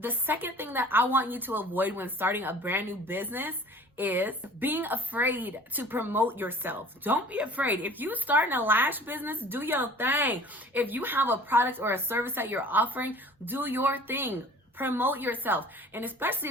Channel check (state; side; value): normal; both; correlation 0.47